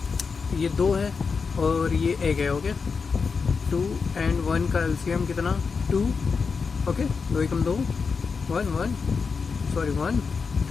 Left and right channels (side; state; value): right; quieter; 5.2 dB